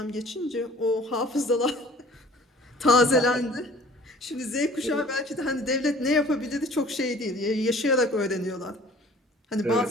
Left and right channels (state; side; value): normal; both; correlation 0.50